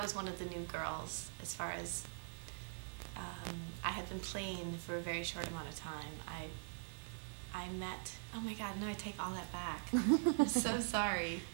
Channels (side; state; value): left; silent; digital silence